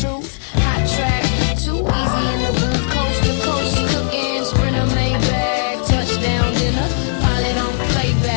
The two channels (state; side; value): silent; right; digital silence